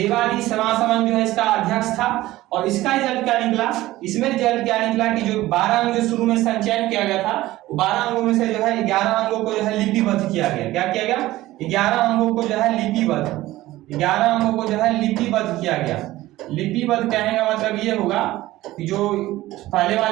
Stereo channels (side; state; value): left; quieter; 16.7 dB